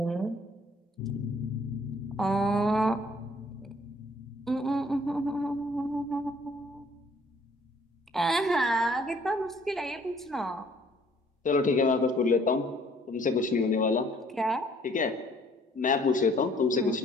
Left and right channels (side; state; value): both; normal; correlation 0.60